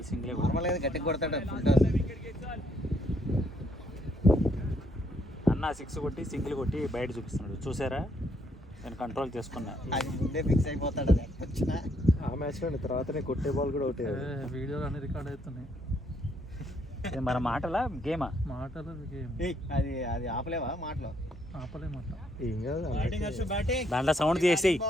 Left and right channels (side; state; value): both; normal; correlation 0.71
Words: సింగిలే. నార్మల్గా గట్టిగా కొడతాడు ఫుల్ టాస్. అన్న 6 కొట్టి సింగిల్ కొట్టి బయట చూపిస్తున్నాడు. చూసారా, నేను కంట్రోల్ చేసుకున్నా. అది ముందే ఫిక్స్ అయిపోతాడు. అది వచ్చినా ఆ మ్యాచ్లో తర్వాతనే కొట్టే బాల్ కూడా ఒకటే. వీడియోలు అన్ని రికార్డ్ అవుతున్నాయి. మన మాటలా గేమా? మాటలు గేమ్. అది అది ఆపలేవా మాటలో? ఆపలేమాట. ఏం కాదు దాంట్లో సౌండ్ చేసేయి.